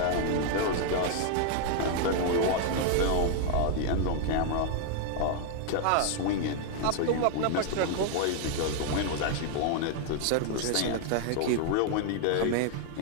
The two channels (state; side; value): different; both; correlation 0.00